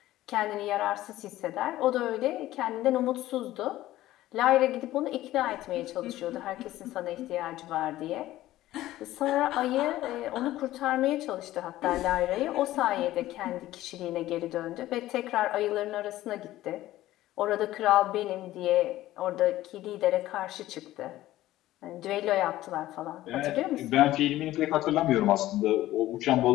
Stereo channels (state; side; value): quieter; right; 15.3 dB